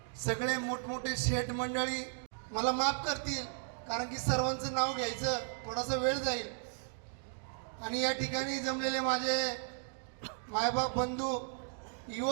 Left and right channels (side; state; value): left; silent; digital silence